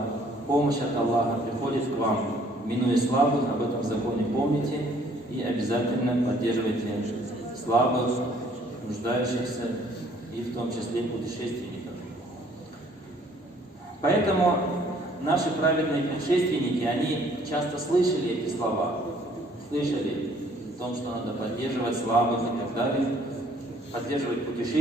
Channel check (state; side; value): normal; both; correlation 0.60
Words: помощь от Аллаха приходит к вам, минуя слабых? Об этом законе помните и обязательно поддерживайте слабых, нуждающихся и в том числе путешественников. Поэтому наши праведные предшественники, они часто слышали эти слова, слышали о том, что надо поддерживать слабых и так далее, поддерживать